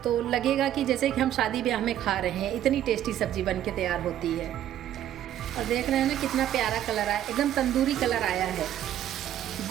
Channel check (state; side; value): quieter; left; 11.5 dB